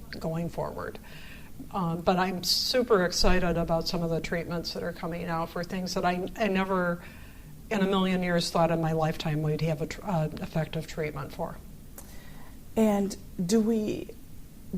going forward. But I'm super excited about some of the treatments that are coming out for things that I never in a million years thought in my lifetime we'd have an effective treatment for. And do we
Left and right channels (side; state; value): both; identical; correlation 1.00